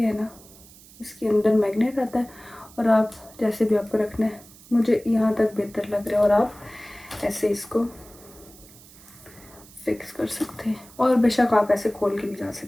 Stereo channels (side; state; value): right; noise; hiss, 22 dB below the sound